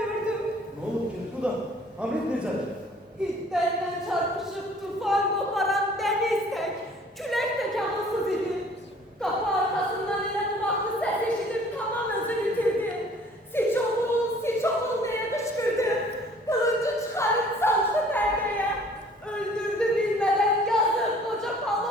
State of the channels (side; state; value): both; normal; correlation 0.54